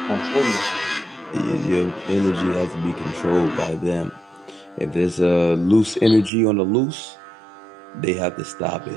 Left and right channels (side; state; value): left; drops out; at 6.3 s